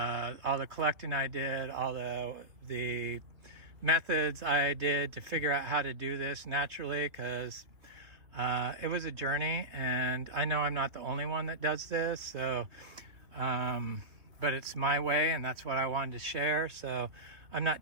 the collecting I did, all the methods I did to figure out how to do this naturally, because it was a journey, and I know I'm not the only one that does this. So but it's my way, and that's what I wanted to share. So I'm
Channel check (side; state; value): left; late; 3.0 ms